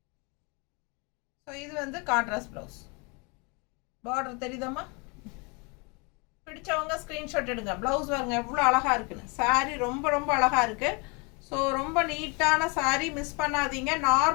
ஸோ இது வந்து கான்ட்ராஸ்ட் பிளவுஸ். பார்டர் தெரியுதாம்மா. பிடிச்சவங்க ஸ்க்ரீன்ஷாட் எடுங்க. பிளவுஸ் பாருங்க எவ்வளோ அழகாக இருக்குன்னு. சாரீ ரொம்ப ரொம்ப அழகாக இருக்குது. ஸோ ரொம்ப நீட்டான சாரீ, மிஸ் பண்ணாதீங்க.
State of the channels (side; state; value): right; quieter; 31.2 dB